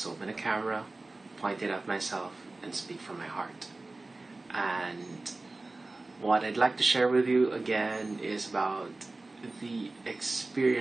open a camera, point it at myself, and speak from my heart. And what I'd like to share with you again is about the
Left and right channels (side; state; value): left; quieter; 3.2 dB